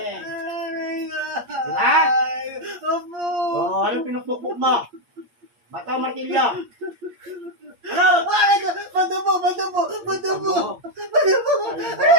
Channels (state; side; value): late; left; 8.6 ms